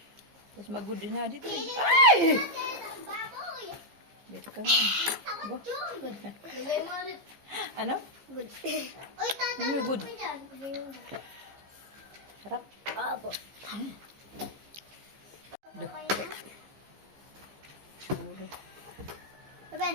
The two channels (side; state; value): left; late; 15 ms